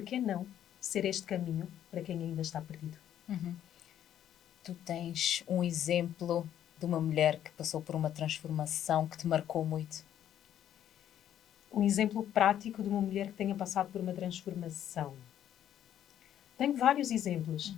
que não ser este caminho para quem ainda está perdido? Tu tens um exemplo de uma mulher que passou por uma transformação que te marcou muito? Um exemplo prático de uma mulher que tenha passado por uma transformação. Tenho vários exemplos.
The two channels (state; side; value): quieter; right; 10.7 dB